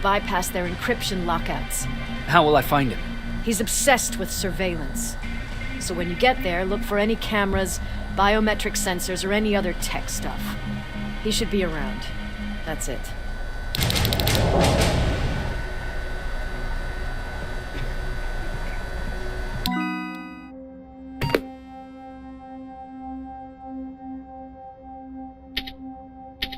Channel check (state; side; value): identical; both; correlation 1.00